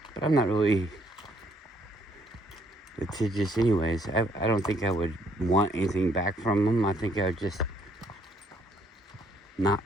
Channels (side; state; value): both; normal; correlation 0.67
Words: But I'm not really litigious anyways. I don't think I would want anything back from them. I think I would just not